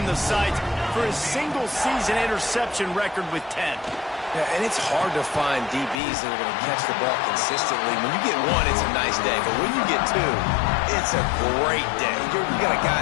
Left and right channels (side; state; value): right; drops out; at 6.0 s